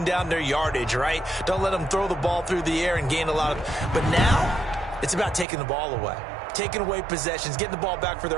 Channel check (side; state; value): left; drops out; at 5.5 s